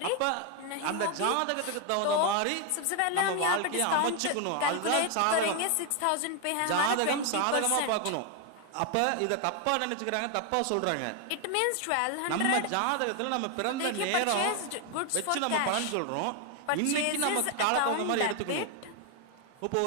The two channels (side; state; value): both; different; correlation 0.01